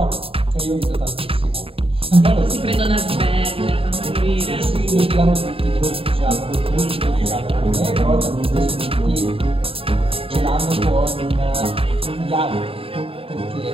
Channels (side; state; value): left; late; 0.27 ms